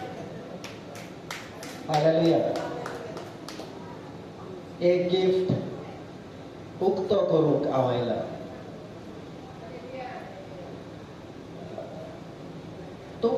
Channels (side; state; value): both; identical; correlation 1.00